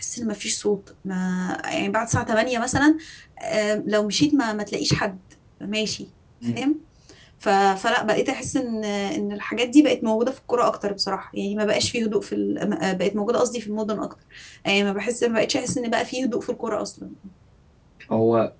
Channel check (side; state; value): both; identical; correlation 1.00